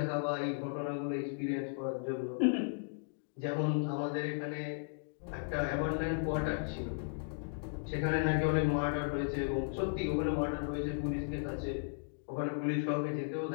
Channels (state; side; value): silent; right; digital silence